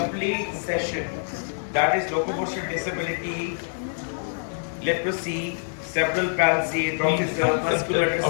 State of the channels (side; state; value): right; silent; 60 dB below the other